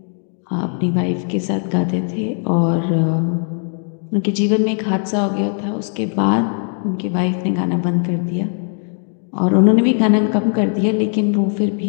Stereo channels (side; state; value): right; silent; 57 dB below the other